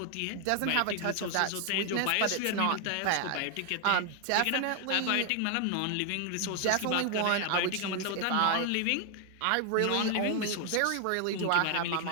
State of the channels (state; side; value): different; both; correlation 0.00